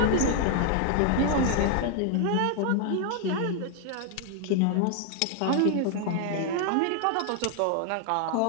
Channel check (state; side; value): different; both; correlation 0.00